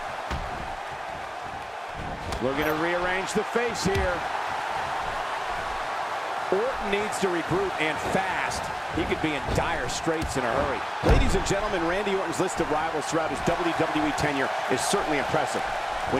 Looking to rearrange the face here. Orton needs to regroup, and fast. He could be in dire straits in a hurry. Ladies and gentlemen, Randy Orton's list of rivals throughout his WWE tenure is certainly impressive.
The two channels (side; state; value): both; identical; correlation 1.00